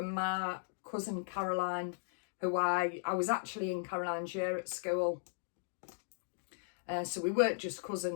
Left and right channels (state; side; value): silent; right; digital silence